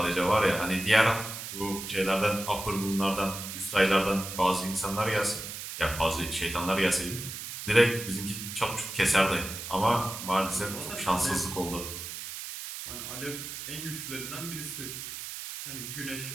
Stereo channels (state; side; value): noise; right; hiss, 8 dB below the sound